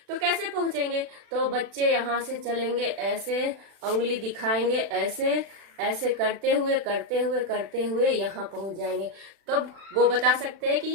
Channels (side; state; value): left; late; 36 ms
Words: तो कैसे पहुंचेंगे? तो बच्चे यहाँ से चलेंगे, ऐसे उंगली दिखाएंगे, ऐसे ऐसे करते हुए यहाँ पहुंच जाएंगे, तब वो बता सकते हैं कि